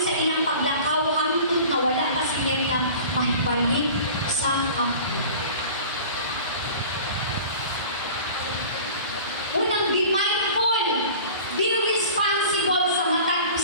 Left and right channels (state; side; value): inverted; both; correlation -0.41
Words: sa ilang paglakaw hangtod na wala pa si Miriam mahibalik sa kampo. Unang, be mindful, be responsible sa matag